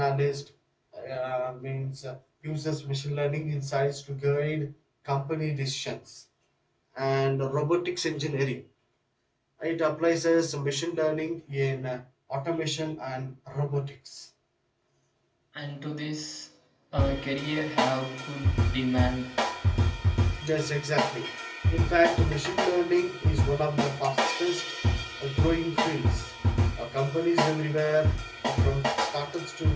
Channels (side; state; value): both; identical; correlation 1.00